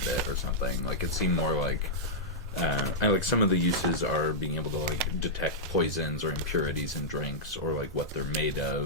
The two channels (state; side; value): normal; both; correlation -0.09